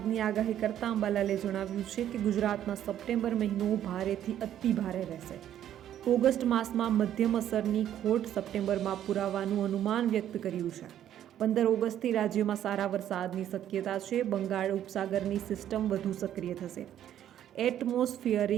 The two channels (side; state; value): left; quieter; 11.0 dB